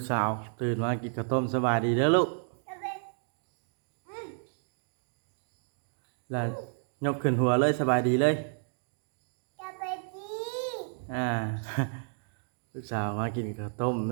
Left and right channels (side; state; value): left; silent; digital silence